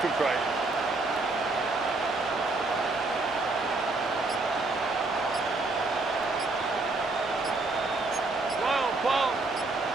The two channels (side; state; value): left; quieter; 3.3 dB